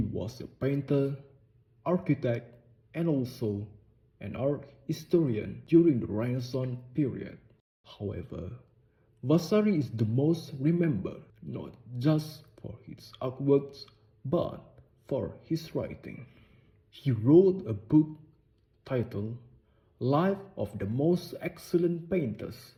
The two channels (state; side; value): identical; both; correlation 1.00